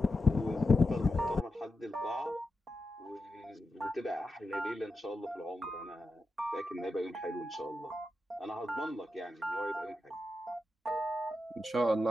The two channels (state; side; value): normal; both; correlation 0.88